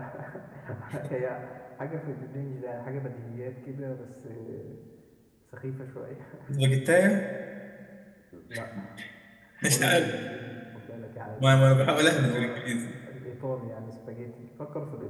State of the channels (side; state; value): both; identical; correlation 1.00